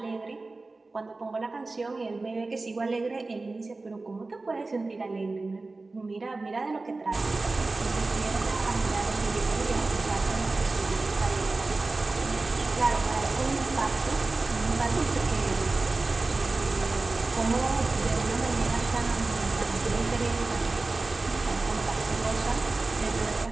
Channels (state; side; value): quieter; left; 3.4 dB